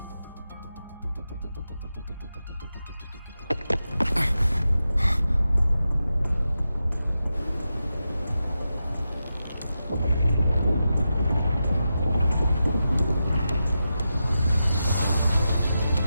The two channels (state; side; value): inverted; both; correlation -0.90